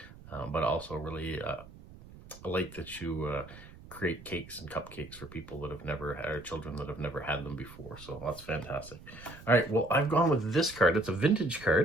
But also really I like that you create cakes and cupcakes for people that have never had, or children that have never had them before. So that's fantastic. All right, well, I've gone with this card. It's a vintage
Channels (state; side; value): noise; right; rumble, 19 dB below the sound